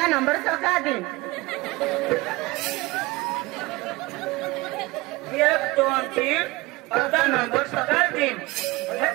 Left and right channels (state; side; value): quieter; left; 21.9 dB